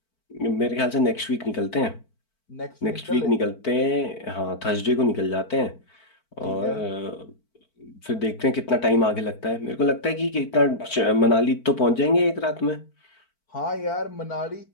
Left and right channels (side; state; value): right; late; 4.5 ms